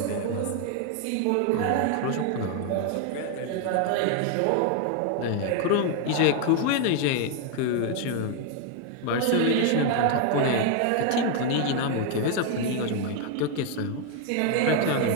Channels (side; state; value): both; different; correlation 0.01